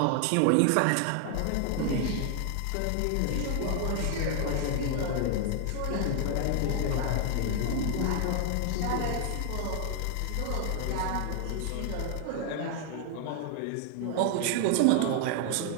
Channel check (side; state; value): both; different; correlation 0.00